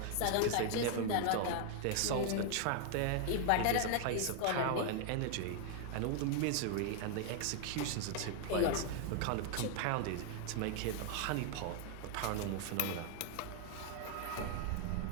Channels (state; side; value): different; both; correlation 0.00